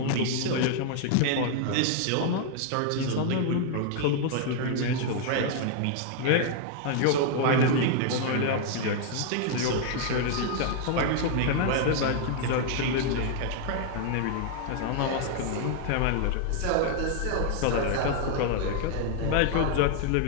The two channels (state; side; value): different; both; correlation 0.00